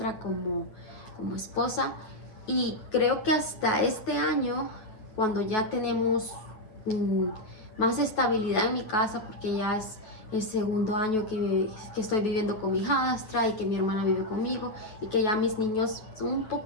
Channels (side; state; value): right; late; 9.3 ms